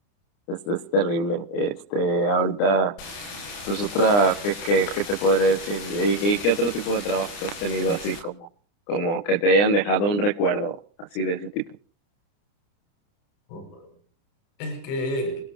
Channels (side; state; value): right; late; 30 ms